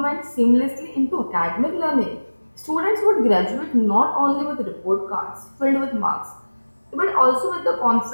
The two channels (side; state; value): both; inverted; correlation -1.00